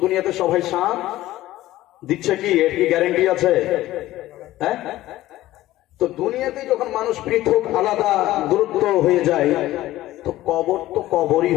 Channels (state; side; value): quieter; right; 15.7 dB